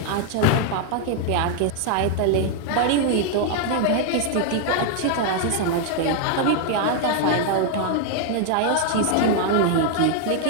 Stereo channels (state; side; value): different; both; correlation 0.00